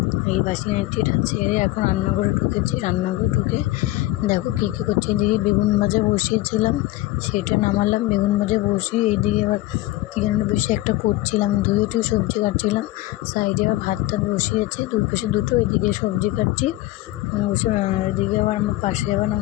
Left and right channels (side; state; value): right; quieter; 17.5 dB